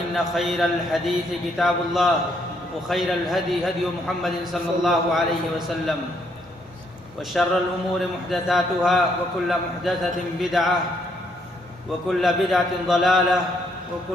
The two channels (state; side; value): normal; both; correlation 0.72